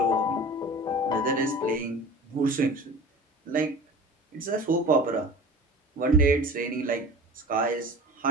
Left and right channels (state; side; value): normal; both; correlation 0.39